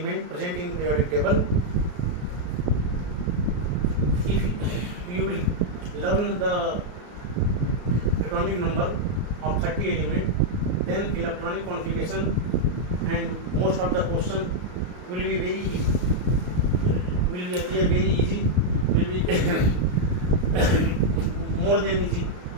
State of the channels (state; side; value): late; left; 33 ms